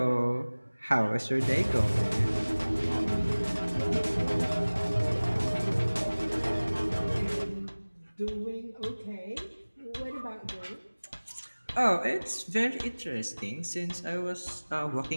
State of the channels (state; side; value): inverted; both; correlation -1.00